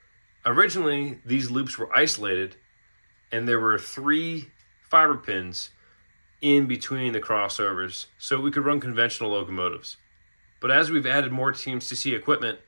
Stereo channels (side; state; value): both; inverted; correlation -1.00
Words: Originally, these loops were isolated, and there were 3 fiber pins in between the crossovers, so we could run conventional locomotives. But as we've added more TMCC equipment,